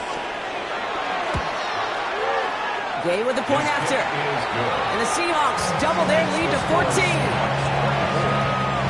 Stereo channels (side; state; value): both; identical; correlation 1.00